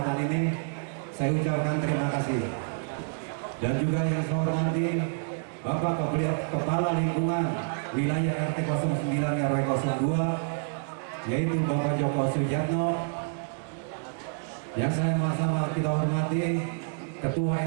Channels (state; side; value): silent; left; digital silence